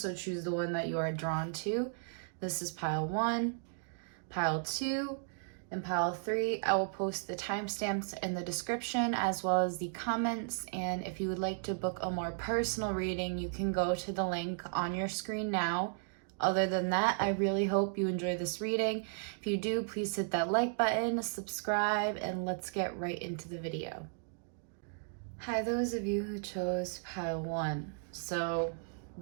choose the one that you are drawn to. This is pile 1, pile 2, and pile 3. I will post the timestamps in the description as well as the comments, and if you would like to book a more personal reading, you can go to the link on your screen now. Other than that, I really hope you enjoy this reading. If you do, please hit that like button, subscribe, and let's get right into the video. Hi, those of you who chose pile 1. So,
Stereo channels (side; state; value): left; silent; digital silence